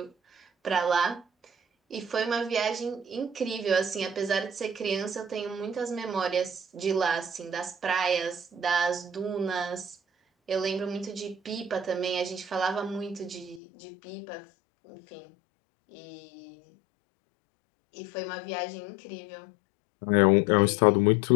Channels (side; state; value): right; drops out; at 13.6 s